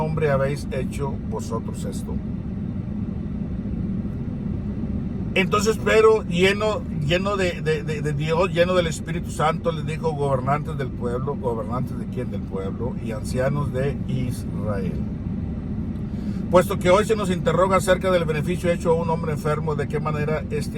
habéis hecho vosotros esto? Entonces Pedro, lleno de Dios, lleno del Espíritu Santo, les dijo: gobernantes del pueblo. ¿Gobernantes de quién? Del pueblo. Y ancianos de Israel. Puesto que hoy se nos interroga acerca del beneficio hecho a un hombre enfermo, de qué manera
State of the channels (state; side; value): identical; both; correlation 1.00